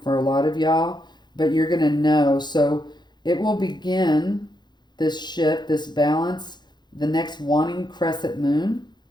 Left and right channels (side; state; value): right; late; 0.21 ms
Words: for a lot of y'all, but you're going to know. So it will begin this shift, this balance, the next wanting crescent moon.